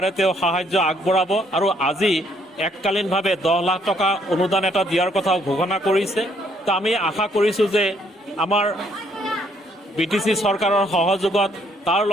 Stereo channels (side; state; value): both; normal; correlation 0.68